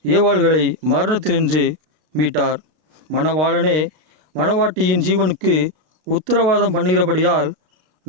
ஏவாள்களை மரணத்தினின்று மீட்டார். மணவாளனே மணவாட்டியின் ஜீவனுக்கு உத்தரவாதம் பண்ணுகிறபடியால்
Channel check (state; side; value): late; left; 33 ms